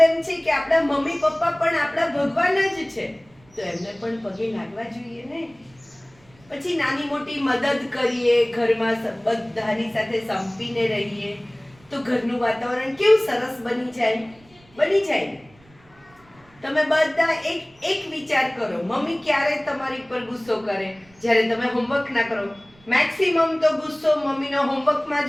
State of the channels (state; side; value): noise; right; rumble, 29 dB below the sound